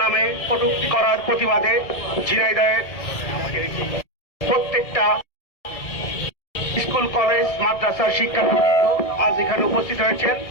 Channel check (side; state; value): right; late; 1.7 ms